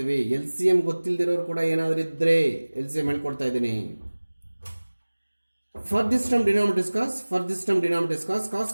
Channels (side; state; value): both; inverted; correlation -1.00